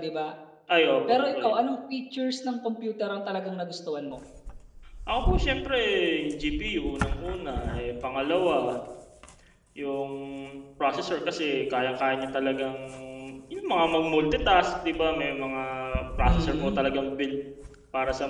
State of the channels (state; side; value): identical; both; correlation 1.00